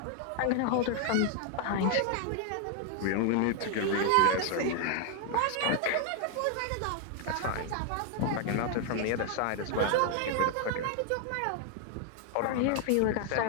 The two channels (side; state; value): both; different; correlation 0.00